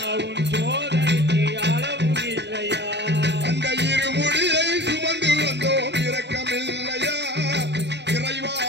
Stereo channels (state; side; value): late; left; 0.50 ms